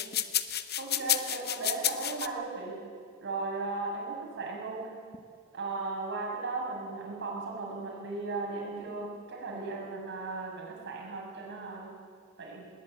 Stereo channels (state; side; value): normal; both; correlation -0.10